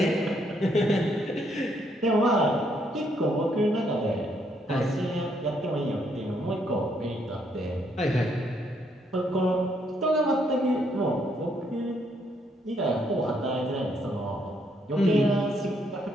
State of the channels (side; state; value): both; normal; correlation 0.72